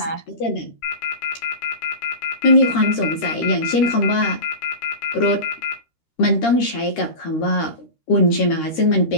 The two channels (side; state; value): right; late; 13 ms